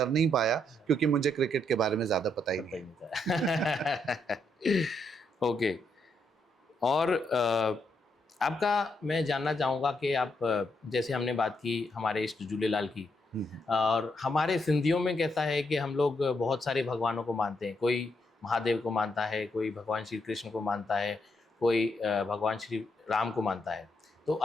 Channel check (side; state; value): both; normal; correlation 0.78